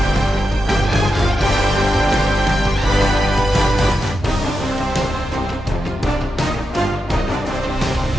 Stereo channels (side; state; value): both; normal; correlation 0.87